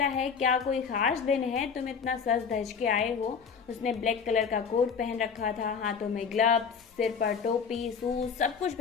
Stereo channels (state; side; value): quieter; right; 6.2 dB